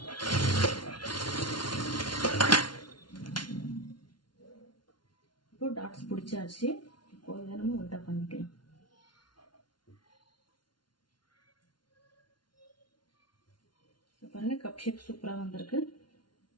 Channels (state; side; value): late; right; 0.71 ms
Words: இப்போ டாட்ஸ் பிடிச்சாச்சு. இப்போ இதை நம்ம உல்டா பண்ணிக்கலாம். பாருங்க, கப் ஷேப் சூப்பராக வந்திருக்கு.